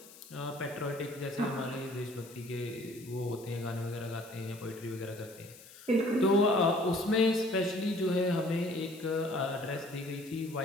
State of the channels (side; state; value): left; noise; hiss, 20 dB below the sound